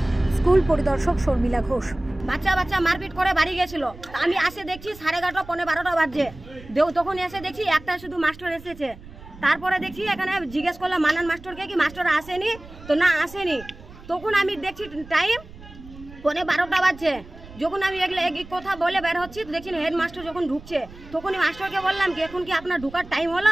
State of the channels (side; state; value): right; noise; rumble, 18 dB below the sound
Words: স্কুল পরিদর্শক শর্মিলা ঘোষ। বাচ্চা মারপিট করে বাড়ি গেছিল, আমি আসে দেখছি 11:30 পৌনে 12টা বাজছে। তখন এসে দেখছি একটা শুধু মাস্টার এসেছে। তারপরে দেখছি এখানে জিজ্ঞেস করলাম মানান মাস্টারকে কি মাস্টার আসেনি, তো না আসেনি। তখন আমি দেখছি টাইম পৌনে 12টা বাজছে। যখন আমি এক কথা বলে বের হচ্ছি দেখছি হেডমাস্টার যখন ঢুকছে, তখনই মাস্টারকে বললাম কি এখন কি আপনার ঢুকার টাইম